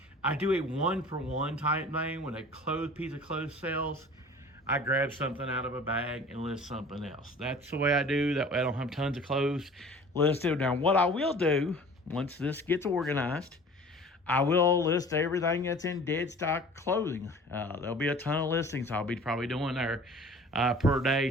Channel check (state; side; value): normal; both; correlation 0.45